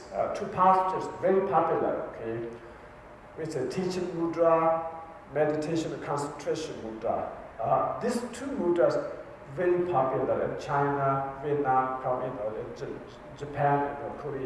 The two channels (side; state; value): both; identical; correlation 1.00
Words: Two pastures, very popular, okay? It's a teaching mudra, meditation and concentration mudra. These two mudras very popular in China, Vietnam, Japan,